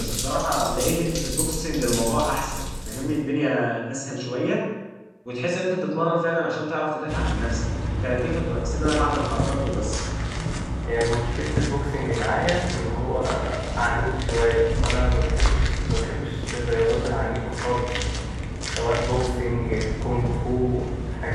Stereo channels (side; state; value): both; identical; correlation 1.00